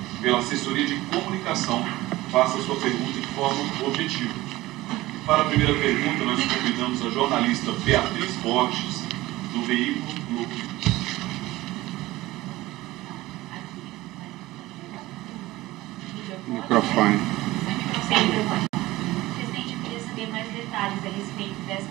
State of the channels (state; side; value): quieter; left; 18.0 dB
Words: pela assessoria de comunicação, faça a sua pergunta de forma objetiva. Para a primeira pergunta, nós convidamos a jornalista Beatriz Borges, do veículo Globo. Microfone. Presidente, eu queria saber mais detalhes a respeito